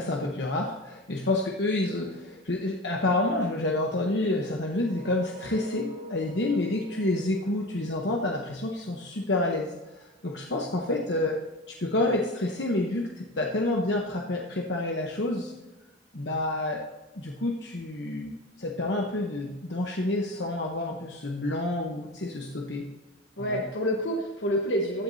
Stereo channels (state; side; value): normal; both; correlation 0.30